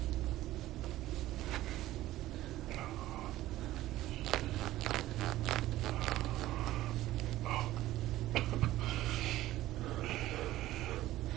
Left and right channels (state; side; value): quieter; left; 15.4 dB